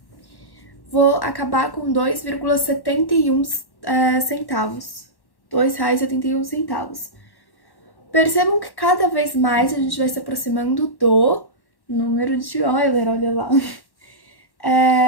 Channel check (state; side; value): late; right; 1.1 ms